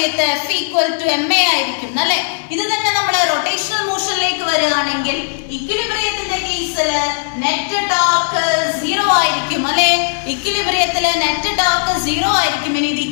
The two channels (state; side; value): silent; right; 69 dB below the other